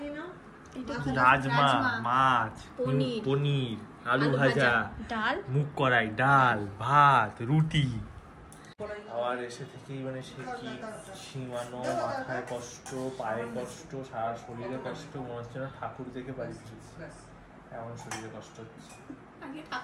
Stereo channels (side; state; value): both; identical; correlation 1.00